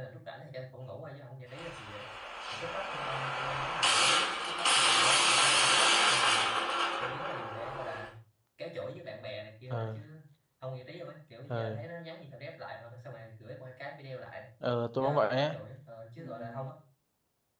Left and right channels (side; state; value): both; identical; correlation 1.00